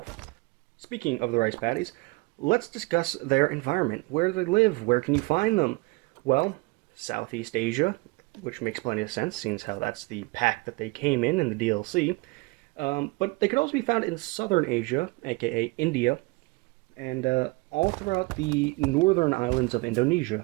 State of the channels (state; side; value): quieter; left; 25.2 dB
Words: Speaking of the rice paddies, let's discuss their environment. Where do they live? Where can you find them? Well, Southeast Asia, which makes plenty of sense, seeing how that's the pack that they came in the DLC. But they could also be found in Southern Asia, aka India, and all throughout the northern islands of